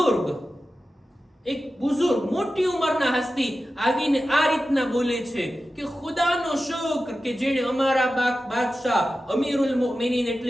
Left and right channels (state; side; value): normal; both; correlation 0.93